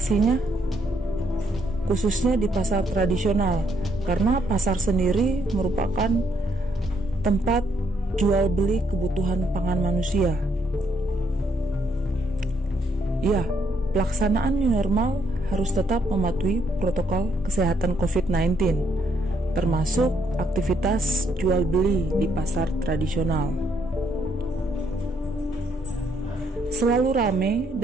khususnya di pasar tradisional, karena pasar sendiri merupakan tempat jual beli kebutuhan pangan manusia. Ya, pelaksanaan new normal harus tetap mematuhi protokol kesehatan COVID-19, termasuk aktivitas jual beli di pasar tradisional. Selalu ramai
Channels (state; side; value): normal; both; correlation 0.73